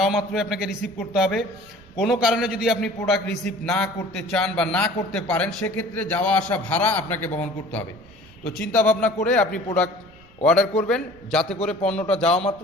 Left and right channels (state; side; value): noise; right; rumble, 26 dB below the sound